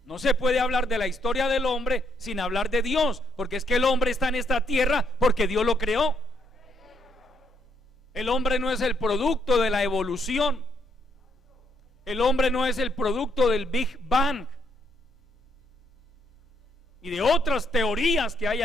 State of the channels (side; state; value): both; normal; correlation 0.73